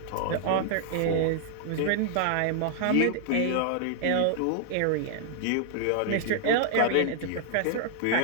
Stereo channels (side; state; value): both; different; correlation -0.01